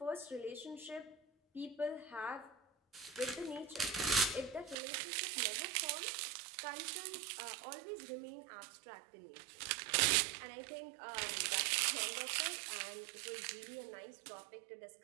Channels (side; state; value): left; drops out; at 4.8 s